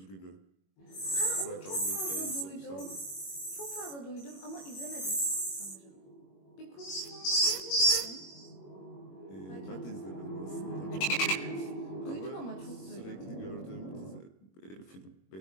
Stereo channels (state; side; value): late; right; 21 ms